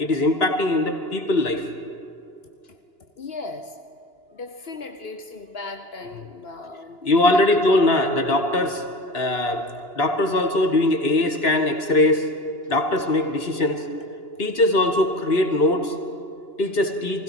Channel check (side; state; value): right; late; 2.9 ms